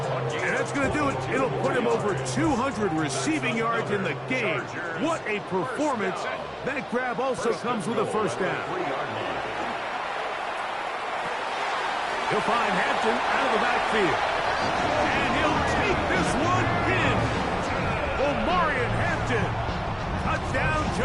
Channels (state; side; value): identical; both; correlation 1.00